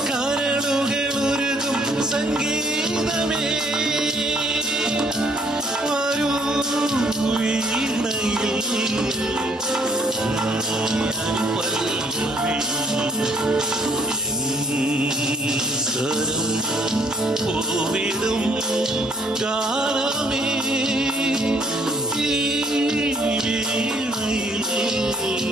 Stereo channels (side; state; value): both; normal; correlation 0.62